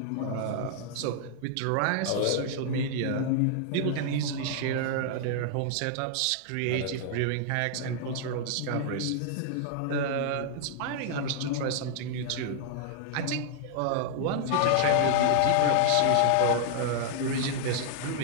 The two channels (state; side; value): different; both; correlation -0.01